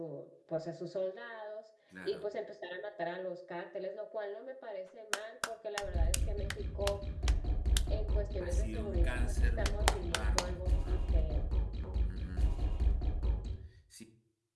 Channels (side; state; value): both; identical; correlation 1.00